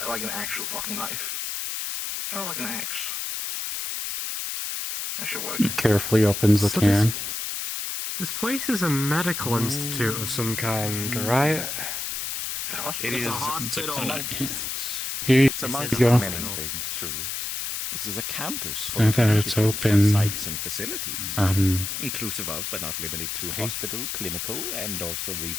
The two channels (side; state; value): left; noise; hiss, 4 dB below the sound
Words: like an actual fucking knife. Kind of like an axe. That should work. Carefully opens the So can. This place is a medical institute of some kind, right? It is a hospital. It's Here amongst you go. many things, truly. This is a campus I full thought of it's different open. sites and facilities, Um, inclusive of, but not limited to, hospital, clinical, and also